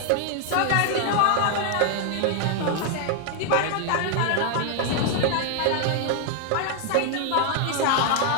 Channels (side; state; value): both; different; correlation 0.00